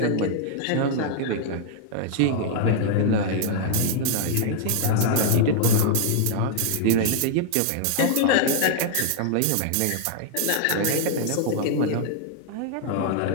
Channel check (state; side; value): different; both; correlation -0.01